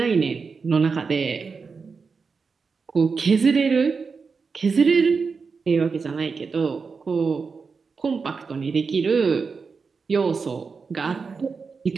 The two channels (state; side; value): quieter; left; 5.0 dB